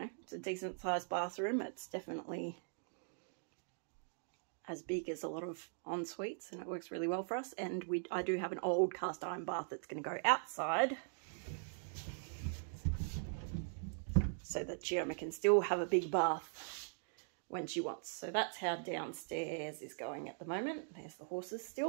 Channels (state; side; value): silent; left; digital silence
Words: it's a decent sized bathroom. It's definitely as big as a lot of en-suites, and it works really well for us. And I do have an old cast iron bath that's going to go outside, so that Chioma can still have a big bath when she wants. So that's how downstairs is going at the moment. There's the horses